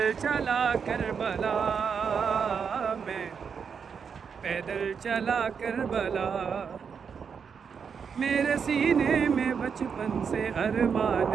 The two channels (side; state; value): left; quieter; 6.5 dB